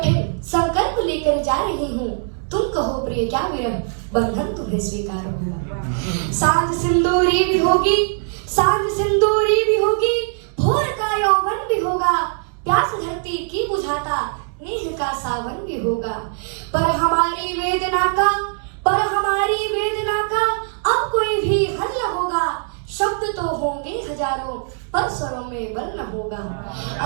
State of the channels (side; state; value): left; silent; 60 dB below the other